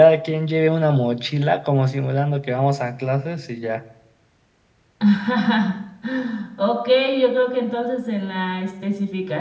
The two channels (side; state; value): both; identical; correlation 1.00